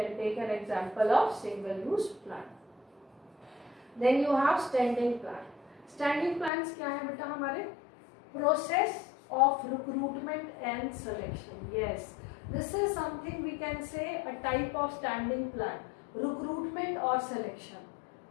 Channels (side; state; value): right; drops out; at 6.5 s